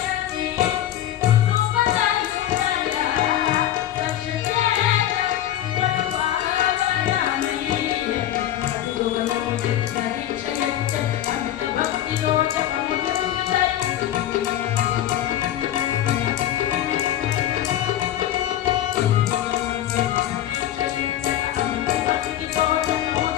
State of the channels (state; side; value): quieter; right; 12.1 dB